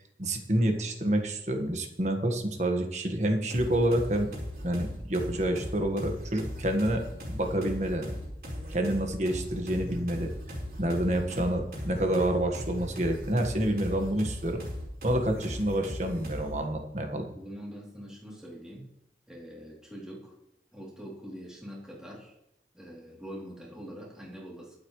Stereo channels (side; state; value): both; normal; correlation 0.72